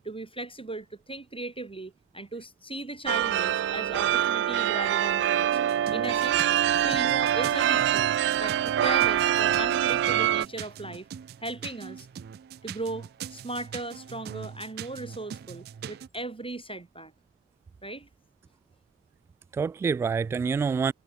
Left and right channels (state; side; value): quieter; left; 8.5 dB